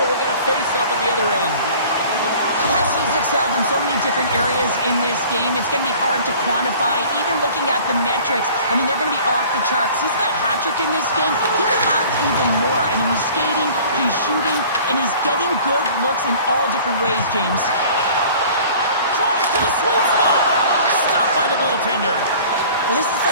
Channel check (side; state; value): both; inverted; correlation -0.47